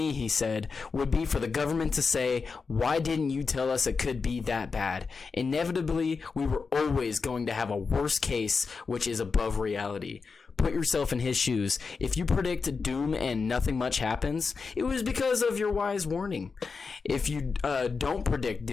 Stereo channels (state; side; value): quieter; right; 4.9 dB